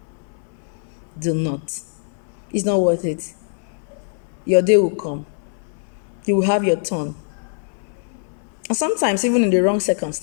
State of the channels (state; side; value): silent; right; 64 dB below the other